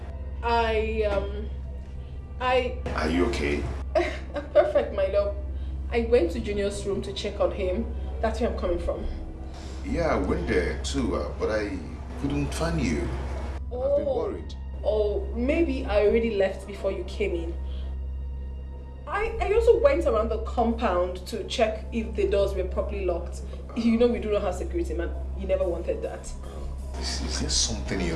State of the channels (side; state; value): both; identical; correlation 1.00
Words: Are you okay? Perfect, my love. I went to Junior's room to check on him. That's where I'm coming from. Yeah, I went there too, but I couldn't find you. I've been worried. Oh, maybe I already left before you came in. I also went around the compound to check if the doors were properly locked. You know we do not have security, man. You never wanted that. Is there something